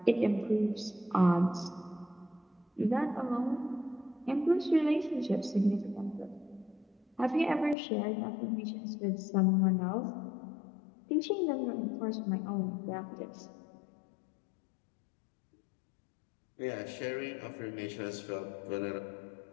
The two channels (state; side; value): drops out; right; at 7.8 s